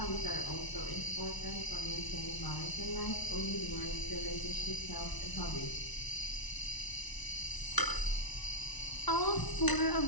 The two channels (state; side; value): late; right; 1.0 ms